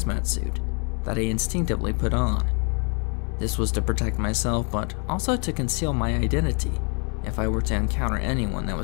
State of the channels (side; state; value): right; quieter; 37.5 dB